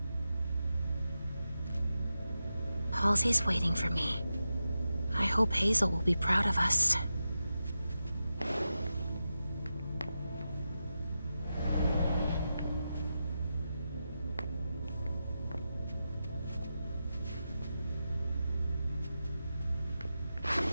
Halsey's waiting for me. I hope Hazel will be proud of us.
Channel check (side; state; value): both; inverted; correlation -0.90